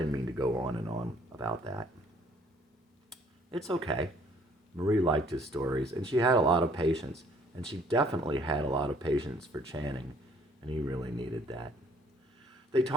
mean to go on and on about that. It's okay. Marie liked his stories, and she had a lot of patience, and she definitely had a lot of patience for Channing, and he really needed that. They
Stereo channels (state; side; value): normal; both; correlation 0.61